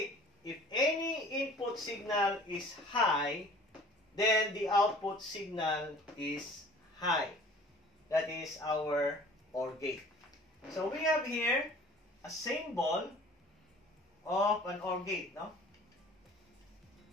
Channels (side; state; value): both; normal; correlation 0.48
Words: if any input signal is high, then the output signal is high. That is our OR gate. So, we have here a symbol of an OR gate, no?